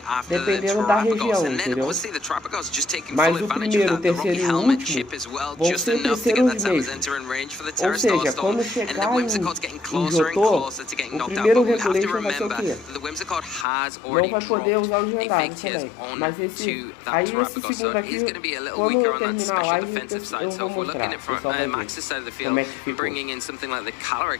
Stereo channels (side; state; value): right; drops out; at 13.7 s